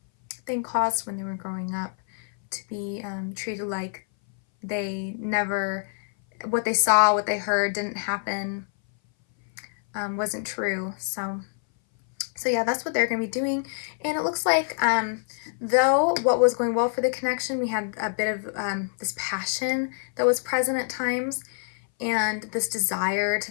thing caused when they were growing up, to be treated like they never, what they saw, what they heard didn't happen, wasn't true. So yeah, that's what they're going to be doing. And it looks like, though what was going well for the connection, we had a bit of this passion that was present at times, and this desire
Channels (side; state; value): right; silent; 59 dB below the other